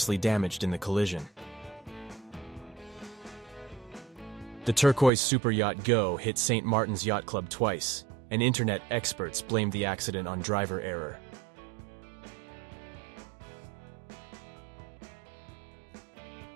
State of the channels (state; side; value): drops out; left; at 5.1 s